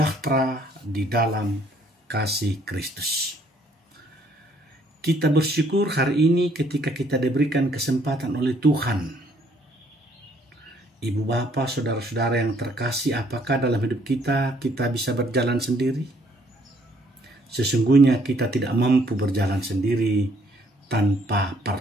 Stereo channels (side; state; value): both; normal; correlation 0.65